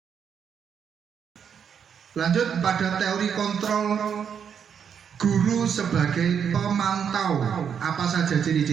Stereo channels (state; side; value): quieter; left; 7.6 dB